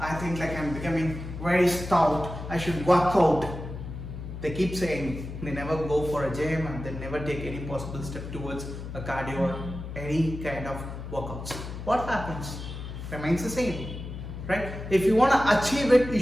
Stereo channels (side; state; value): left; noise; hum, 9 dB below the sound